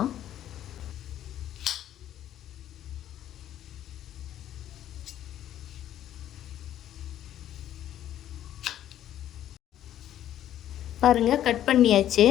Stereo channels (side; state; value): right; quieter; 11.7 dB